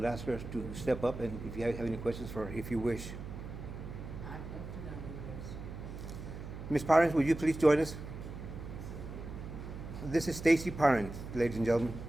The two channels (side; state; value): right; noise; hum, 9 dB below the sound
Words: ask her to step up, and if you have any questions for her, if you wish. Ms. Parent, would you please join us? This is Stacy Parent, ladies and gentlemen.